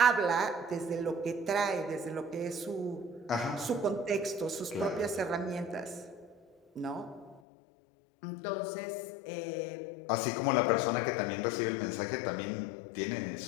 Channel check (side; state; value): right; drops out; at 7.4 s